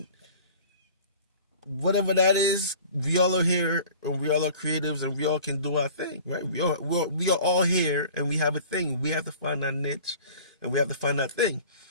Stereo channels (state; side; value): inverted; both; correlation -0.45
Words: whatever that is, we all are here, and we all are creatives, and we all can do our thing, right? We are all here, and we have a thing. We have to find our niche, and we have to find our thing.